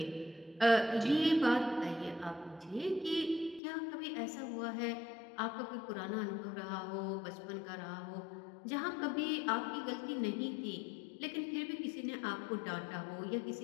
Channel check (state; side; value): drops out; right; at 3.6 s